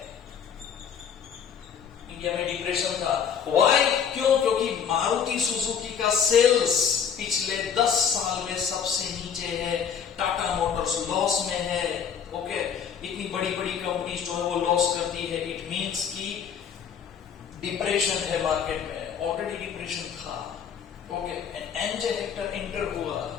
इंडिया में डिप्रेशन था। व्हाई? क्यों? क्योंकि मारुति सुजुकी का सेल्स पिछले 10 साल में सबसे नीचे है, टाटा मोटर्स लॉस में है, ओके, इतनी बड़ी बड़ी कंपनीज जो है वो लॉस करती है। इट मींस कि डिप्रेशन है मार्केट में, ऑलरेडी डिप्रेशन था, okay. And MJ Hector enter हुआ,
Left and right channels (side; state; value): right; quieter; 7.6 dB